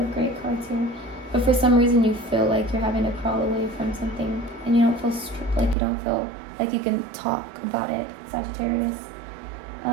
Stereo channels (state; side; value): drops out; left; at 5.8 s